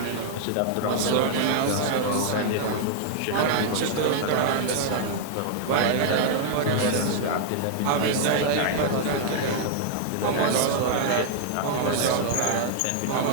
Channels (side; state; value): both; different; correlation -0.01